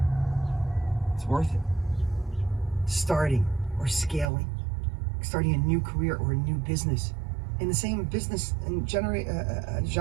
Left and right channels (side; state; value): left; drops out; at 4.3 s